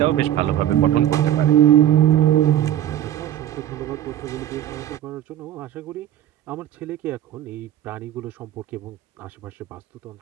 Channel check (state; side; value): quieter; left; 11.6 dB